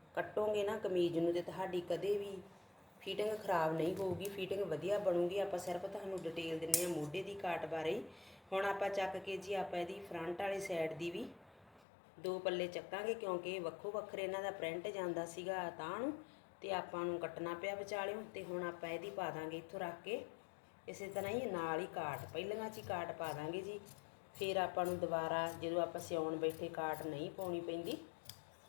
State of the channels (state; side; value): drops out; right; at 11.9 s